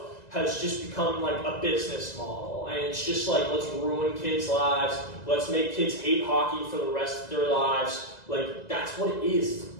has just become like a business model. And it's just like, let's ruin kids' lives. Let's make kids hate hockey for the rest of their lives. Like, that's what it is. It's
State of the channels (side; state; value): right; late; 2.0 ms